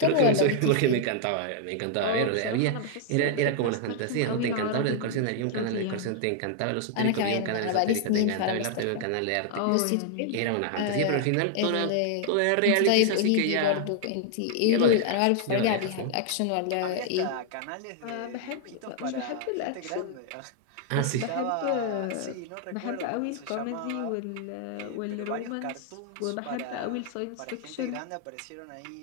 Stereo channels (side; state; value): both; different; correlation 0.00